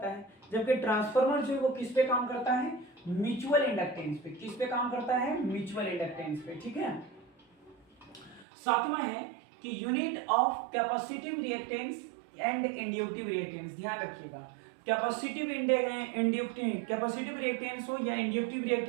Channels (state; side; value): drops out; left; at 8.5 s